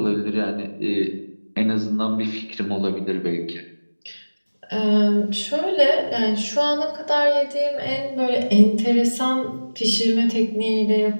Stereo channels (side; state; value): both; inverted; correlation -1.00